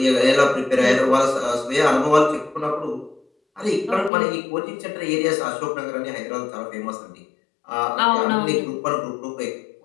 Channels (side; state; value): right; drops out; at 4.1 s